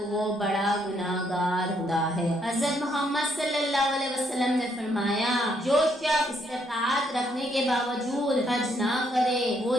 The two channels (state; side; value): normal; both; correlation 0.73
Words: وہ بڑا گناہ گار ہوتا ہے۔ حضرت محمد صلی اللہ علیہ وسلم نے فرمایا، جو شخص استطاعت رکھنے کے باوجود حج نہ کرے وہ